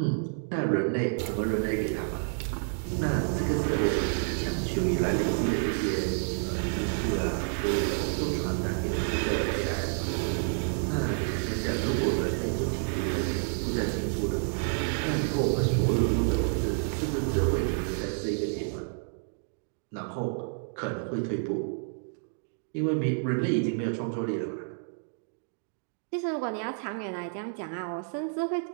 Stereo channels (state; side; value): silent; left; digital silence